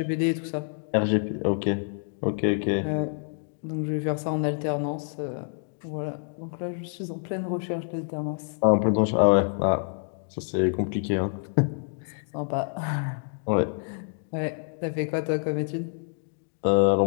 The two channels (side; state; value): right; silent; 60 dB below the other